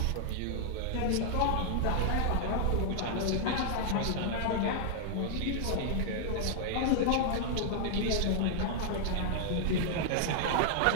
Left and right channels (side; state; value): both; different; correlation -0.01